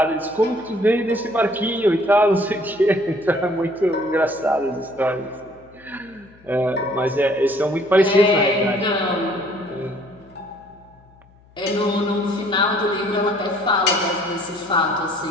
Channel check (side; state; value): left; noise; hum, 28 dB below the sound